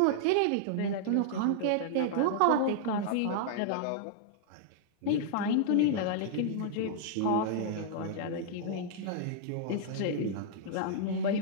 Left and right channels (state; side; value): different; both; correlation -0.01